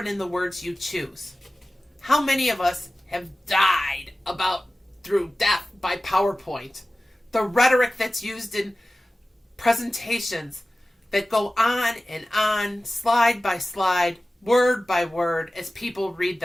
in the words you choose. How many of us have died through death by PowerPoint? The rhetoric that's used in presentations that go on and on, slide by slide, word by word, as people read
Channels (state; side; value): normal; both; correlation 0.96